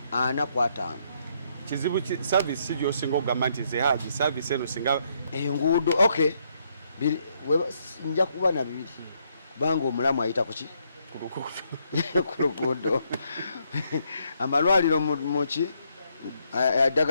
45 kizibu service gy'osinga okugamba nti ze haji service eno singa enguudo okay nja kuba na bibiri kubanga omulamu ayita kuki ku luguudo amalwaliro muki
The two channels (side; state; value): both; inverted; correlation -0.74